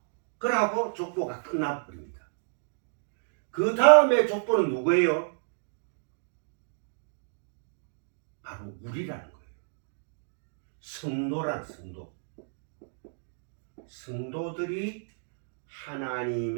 그러고 족보가 끝나버립니다. 그 다음에 족보는 누구예요? 바로 우리라는 거예요. 성도란 성도. 성도들이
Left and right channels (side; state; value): left; silent; digital silence